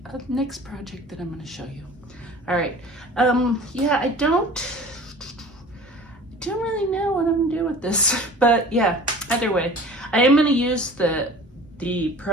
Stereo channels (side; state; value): both; normal; correlation 0.43